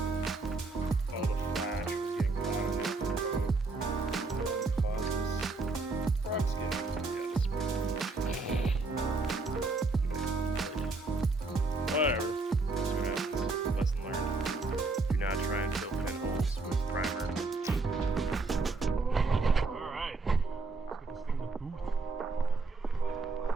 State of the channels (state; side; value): quieter; left; 3.5 dB